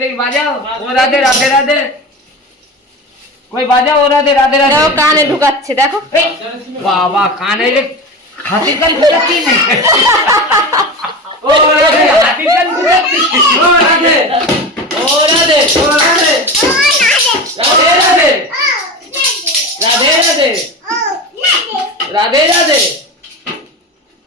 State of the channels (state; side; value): normal; both; correlation 0.27